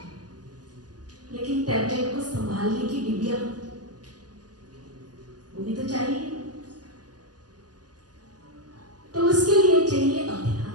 लेकिन टैबलेट को संभालने की डिबिया वो भी तो चाहिए। तो उसके लिए चाहिए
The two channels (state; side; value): late; left; 0.69 ms